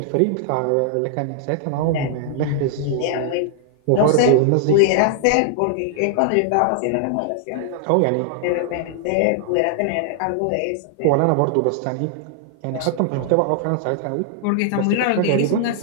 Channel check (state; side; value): different; both; correlation -0.01